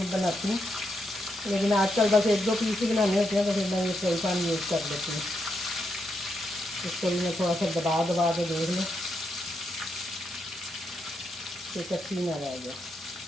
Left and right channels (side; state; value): both; normal; correlation 0.81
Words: बनाती हूँ, लेकिन आजकल बस 1-2 पीस ही बनाने होते हैं, तो फिर मैं ये फ्राई पैन यूज़ कर लेती हूँ। इसको भी मैं थोड़ा सा दबा के देख लूँ कि कच्ची ना रह जाए।